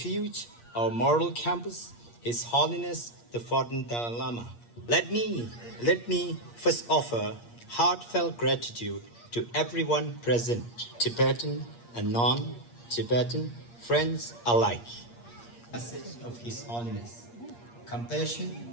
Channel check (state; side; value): late; right; 8.5 ms